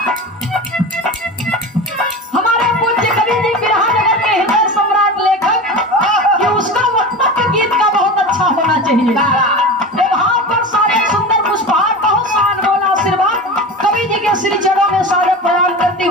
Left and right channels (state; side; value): normal; both; correlation 0.29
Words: हमारे पूज्य कवि जी बिरहा नगर के हृदय सम्राट लेखक कि उसका वक्तव्य गीत का बहुत अच्छा होना चाहिए। भाव पर सारे सुंदर पुष्पहार, बहुत सा अनमोल आशीर्वाद कवि जी के श्री चरणों में सारे प्रणाम करती